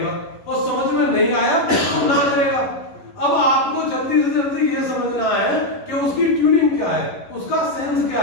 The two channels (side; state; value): right; late; 11 ms